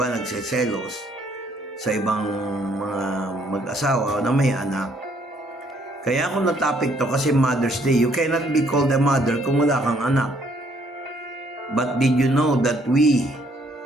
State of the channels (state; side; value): normal; both; correlation 0.66